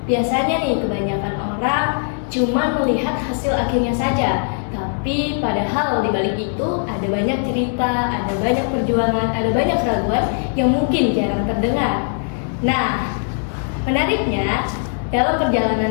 Biasanya nih kebanyakan orang cuma melihat hasil akhirnya saja, tapi padahal di balik itu ada banyak cerita, ada banyak perjuangan, ada banyak keraguan yang mungkin jarang terdengar. Nah, menariknya dalam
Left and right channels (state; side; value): silent; right; 66 dB below the other